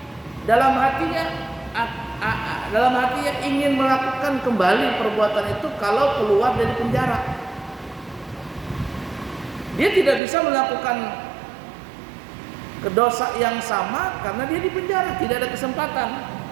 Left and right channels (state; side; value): drops out; left; at 10.2 s